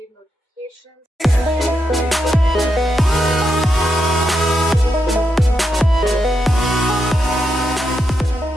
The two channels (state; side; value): normal; both; correlation 0.83